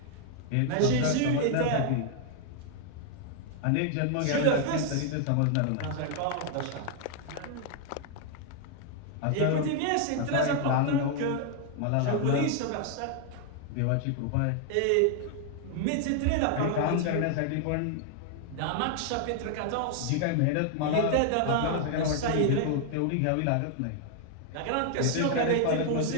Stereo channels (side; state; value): both; different; correlation 0.00